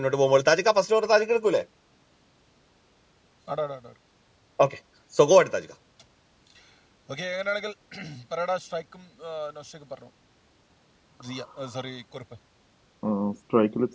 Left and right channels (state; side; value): identical; both; correlation 1.00